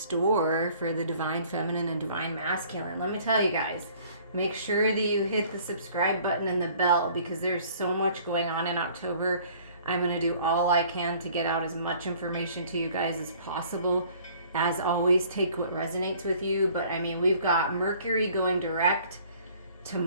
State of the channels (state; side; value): inverted; both; correlation -0.55